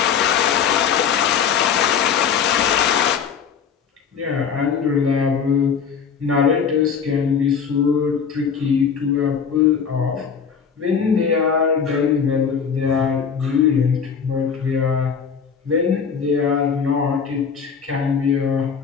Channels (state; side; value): quieter; right; 6.8 dB